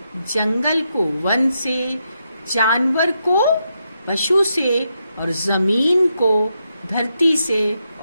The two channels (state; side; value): inverted; both; correlation -0.83